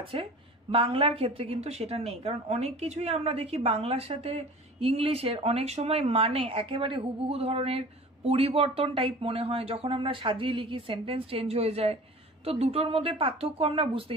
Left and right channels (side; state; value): both; normal; correlation 0.42